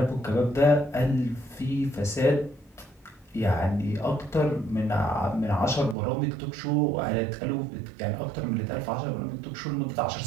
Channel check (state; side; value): drops out; left; at 6.0 s